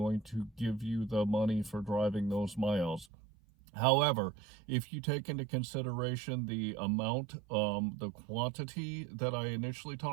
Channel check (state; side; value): drops out; left; at 3.1 s